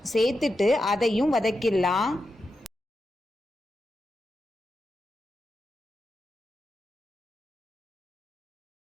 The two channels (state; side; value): normal; both; correlation 0.88